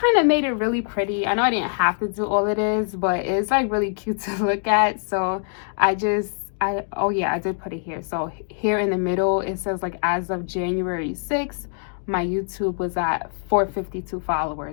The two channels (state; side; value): silent; right; digital silence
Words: of made it really pretty. I know I didn't have to do all it is, but it's like really cute to look at. So oh yeah, I did put it here. So here in the middle, it says like as of January 6th, my YouTube was at 452